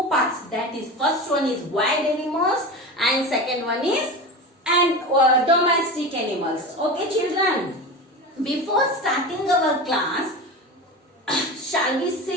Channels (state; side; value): normal; both; correlation 0.27